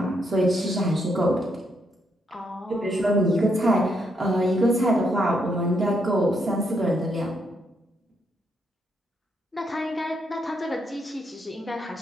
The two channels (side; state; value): both; normal; correlation 0.76